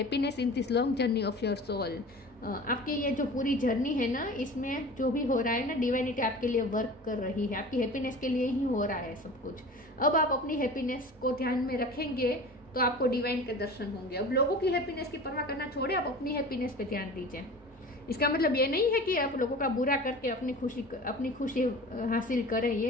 in this long journey of your soul. आपकी ये जो पूरी जर्नी है ना, इसमें जो भी हो रहा है ना, डिवाइनिटी आपके लिए वर्क कर रही है, आपकी हैप्पीनेस के लिए ही हो रहा है सब कुछ। अब आप अपनी हैप्पीनेस को ध्यान में रखेंगे तो आपको डिवाइन के दर्शन होंगे। अब लोगों की हैप्पीनेस की परवाह करना छोड़े, आप अपनी हैप्पीनेस पे ध्यान दीजिए। इसका मतलब ये नहीं है कि आप लोगों का बुरा करके अपनी खुशी हासिल करें,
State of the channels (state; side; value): normal; both; correlation 0.38